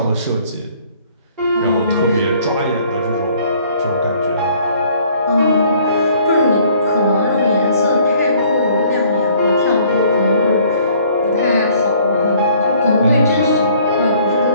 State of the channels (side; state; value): both; inverted; correlation -0.59